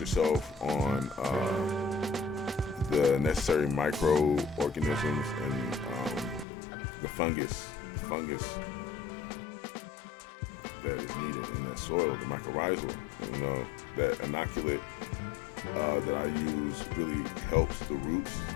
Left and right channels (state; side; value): drops out; right; at 6.5 s